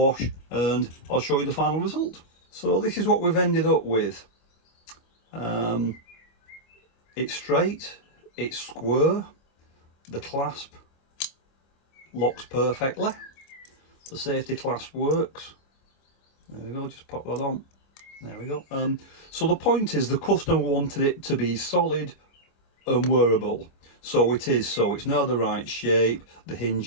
and I'll show you the final result. So this is what we've ended up with. It's straight. It's square, the clasp locks perfectly, the safety clasp works. There we go, just pop that on. There we go. So the point is, the customer wanted it to be solid and wearable. So it is, so it's now the right shape, the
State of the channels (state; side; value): late; right; 25 ms